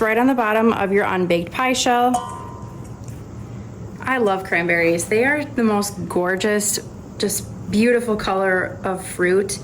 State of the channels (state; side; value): identical; both; correlation 1.00